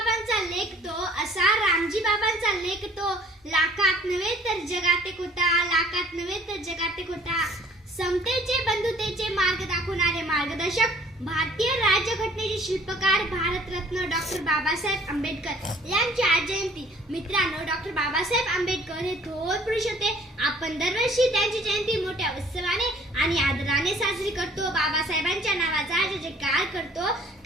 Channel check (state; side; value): normal; both; correlation 0.55